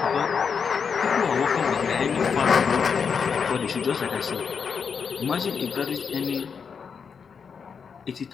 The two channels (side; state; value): right; quieter; 6.2 dB